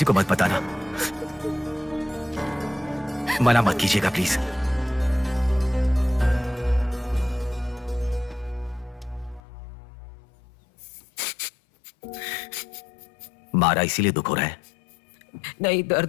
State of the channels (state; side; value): drops out; right; at 9.4 s